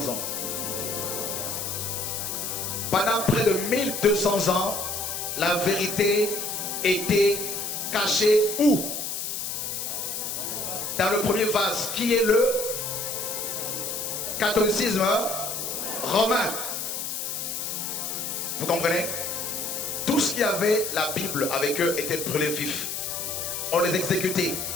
ans. Pendant près de 1200 ans, la vérité était cachée où? Dans le premier vase, qui est le catholicisme romain. Vous comprenez? Tout ce qui avait la Bible avec eux était brûlé vif. On les exécutait,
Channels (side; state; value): left; noise; hiss, 4 dB below the sound